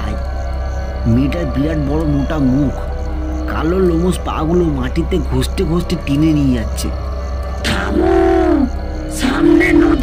মেয়েটার বিরাট বড় মোটা মুখ, কালো লোমস পাগুলো মাটিতে ঘষতে ঘষতে টেনে নিয়ে যাচ্ছে। থামো, সামনে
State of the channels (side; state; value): both; identical; correlation 1.00